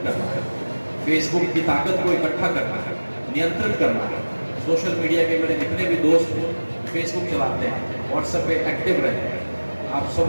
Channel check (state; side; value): inverted; both; correlation -1.00